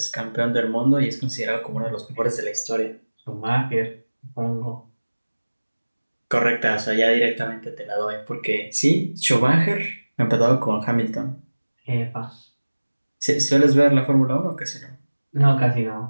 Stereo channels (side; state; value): both; inverted; correlation -1.00